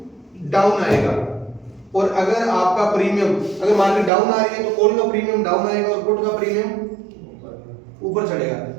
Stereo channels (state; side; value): drops out; left; at 4.1 s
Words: डाउन आएगा, और अगर आपका प्रीमियम, अगर मार्केट डाउन आ रही है तो कॉल का प्रीमियम डाउन आएगा और पुट का प्रीमियम ऊपर चढ़ेगा।